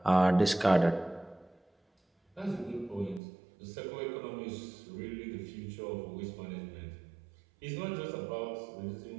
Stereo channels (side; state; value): left; drops out; at 3.2 s